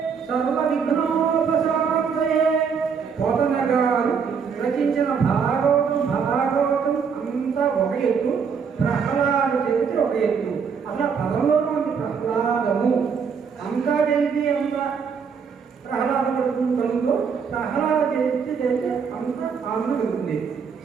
సర్వవిఘ్నోపశాంతయే. పోతన గారు రచించిన భాగవతం అంతా ఒక ఎత్తు, ప్రహ్లాద చరిత్ర ఒక ఎత్తు. అలా పదంలోనూ ఉంది ప్రహ్లాదము. అంతా చేసి అంత ప్రహ్లాద కలుగుతూ ప్రహ్లాద చేస్తే అంత ఆనందం కలుగుతుంది.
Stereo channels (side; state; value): left; quieter; 6.3 dB